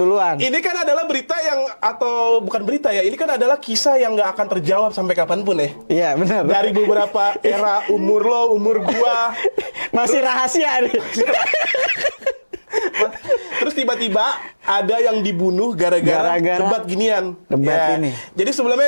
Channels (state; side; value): inverted; both; correlation -1.00